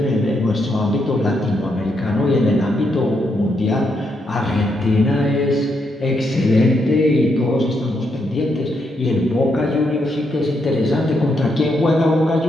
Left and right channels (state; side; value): normal; both; correlation 0.79